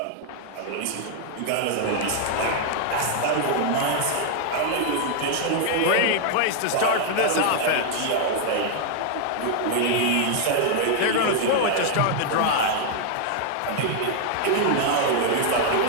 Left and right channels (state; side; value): different; both; correlation 0.00